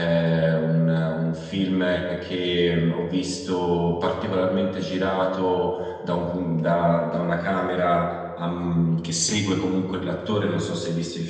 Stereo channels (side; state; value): both; identical; correlation 1.00